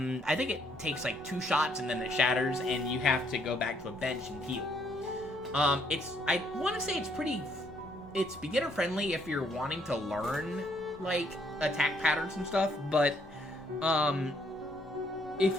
think it takes like 2 shots and then it shatters and you have to go back to a bench and heal. I want to say it's beginner friendly if you're wanting to learn like attack patterns and stuff, but if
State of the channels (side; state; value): both; normal; correlation 0.69